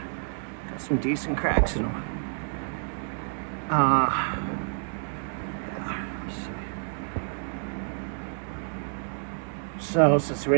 Got some decent cracks in them. Yeah, let's see. So since we're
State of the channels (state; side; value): silent; left; 55 dB below the other